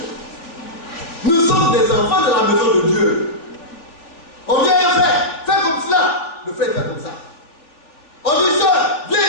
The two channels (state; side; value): late; right; 3.4 ms